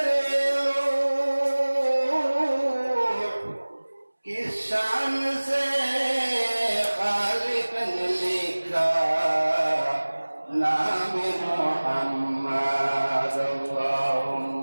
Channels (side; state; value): both; inverted; correlation -1.00